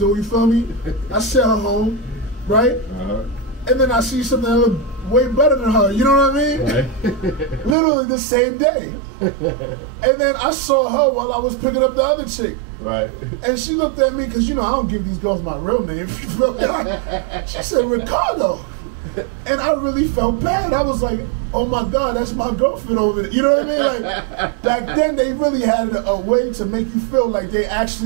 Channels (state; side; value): drops out; left; at 7.8 s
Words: You feel me? I sent her home, right? Uh-huh. And then I see something that looked way better than her. You know what I mean? Right. Literally the same day. And then I saw her while I was picking up the other chick. Right. And she looked at me because I don't give these girls my real name. She said Ricardo. And I really felt bad. I was like, oh my God, that's my girlfriend over there. You know what I mean? Like, back then they really had a way to make you feel like they